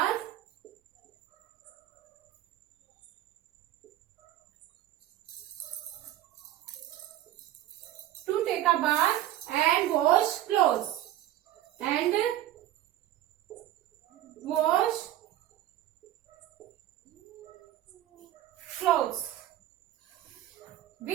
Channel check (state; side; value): quieter; left; 13.4 dB